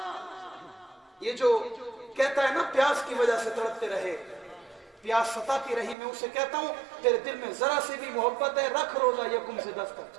ये जो कहता है ना प्यास की वजह से तड़पते रहे, प्यास सताती रही, मैं उसे कहता हूँ तेरे दिल में जरा से भी मोहब्बत है, रख रोजा यकुम से 10 तक,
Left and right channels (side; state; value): left; drops out; at 6.0 s